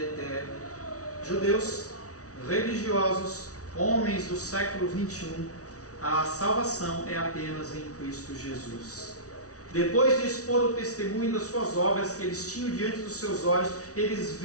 Judeus, religiosos, homens do século 21, a salvação é apenas em Cristo Jesus. Depois de expor o testemunho das suas obras que eles tinham diante dos seus olhos, eles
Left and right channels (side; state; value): right; late; 0.67 ms